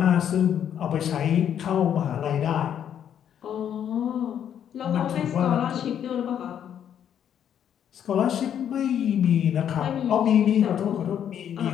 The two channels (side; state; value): right; quieter; 9.3 dB